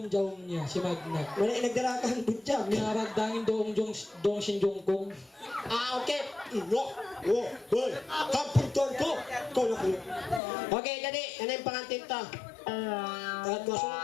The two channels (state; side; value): drops out; right; at 10.4 s